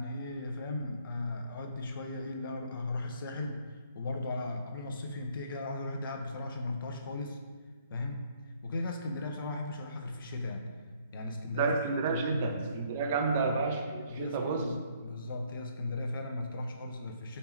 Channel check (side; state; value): both; inverted; correlation -0.65